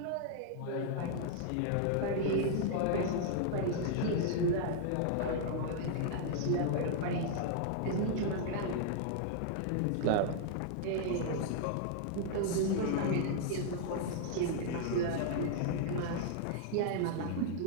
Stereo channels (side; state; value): both; different; correlation 0.00